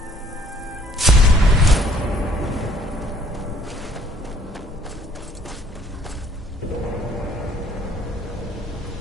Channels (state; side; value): normal; both; correlation 0.59